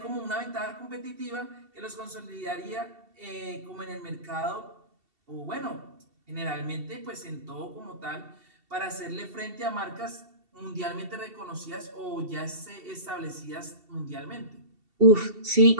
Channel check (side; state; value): left; late; 2.7 ms